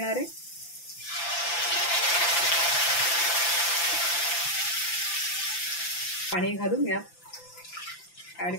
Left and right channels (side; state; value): right; late; 5.9 ms